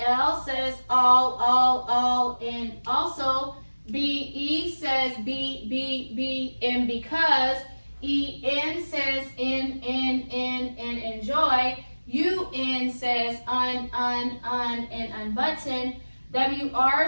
says all in also. BE says be in because. EN says in enjoy. UN says un in unbutton. WR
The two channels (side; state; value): both; inverted; correlation -1.00